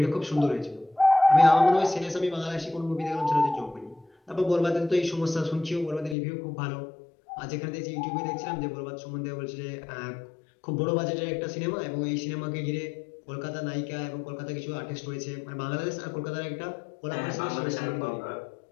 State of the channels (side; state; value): right; drops out; at 6.2 s